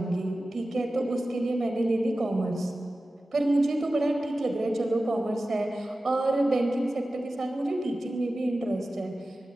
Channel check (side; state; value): both; normal; correlation 0.95